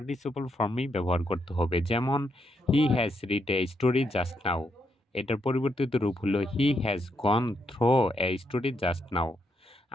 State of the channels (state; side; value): normal; both; correlation 0.78